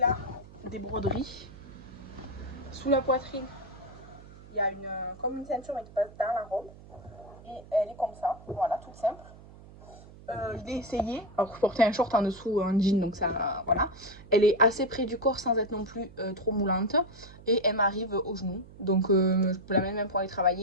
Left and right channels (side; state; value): right; noise; hum, 19 dB below the sound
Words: des broderies. Sous la poitrine, il y a comme une ceinture mais qui passe dans la robe. Et elle est comme ça, voilà, toute simple. Je l'ai essayé, alors je portais un short en dessous, un jean, donc ça, voilà. Elle est assez près du corps sans être non plus trop moulante. Et elle m'arrive au genou, donc je peux la mettre même pour aller